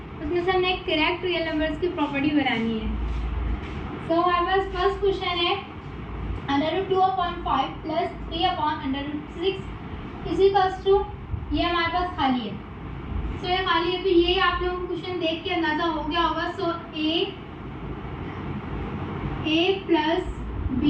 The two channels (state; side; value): identical; both; correlation 1.00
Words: उसमें से हमने एक करेक्ट रियल नंबर्स की प्रॉपर्टी बनानी है। सो हमारे पास फर्स्ट क्वेश्चन है √2/5 प्लस 3/√6 इज इक्वल्स टू, ये हमारे पास खाली है। सो ये खाली है, तो ये आप लोगों को क्वेश्चन देख के अंदाजा हो गया होगा। So a plus b